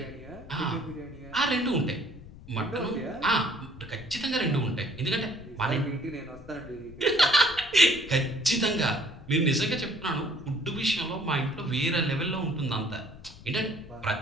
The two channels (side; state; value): left; noise; rumble, 18 dB below the sound